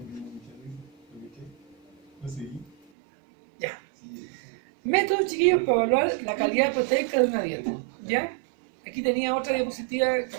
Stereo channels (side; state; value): left; drops out; at 2.8 s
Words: Ya. Métodos, chiquillos, para evaluar la calidad proteica de una dieta. ¿Ya? Aquí tenía otra diapositiva que